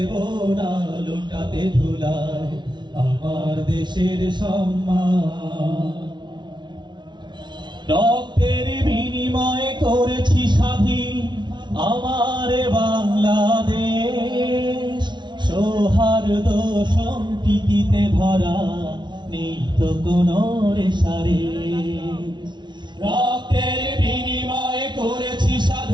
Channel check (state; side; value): late; left; 0.22 ms